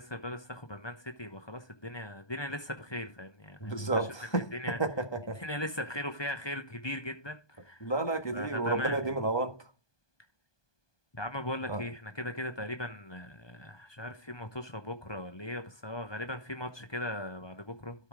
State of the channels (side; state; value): right; late; 1.2 ms